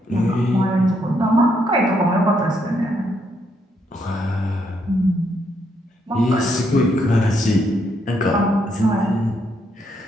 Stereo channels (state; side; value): normal; both; correlation 0.75